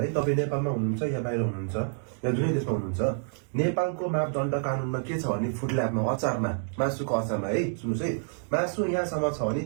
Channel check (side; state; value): left; silent; 59 dB below the other